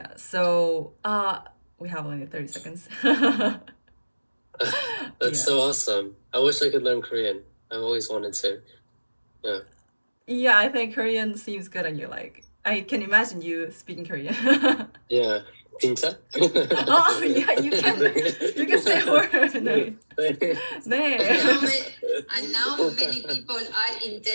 so we have only 30 seconds. That's so awesome. I wish I could learn Korean. I've always wanted to. Yeah. Yeah, I think Korean seems good on you. Like, I can imagine you speaking Korean. Yeah. 진짜? Oh, yeah, you can say a word. 네. 네. And now many people are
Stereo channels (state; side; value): inverted; both; correlation -1.00